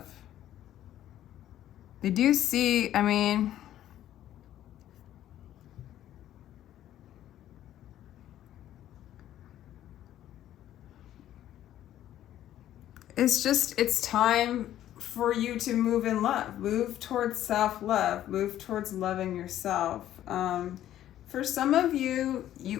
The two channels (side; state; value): right; quieter; 12.3 dB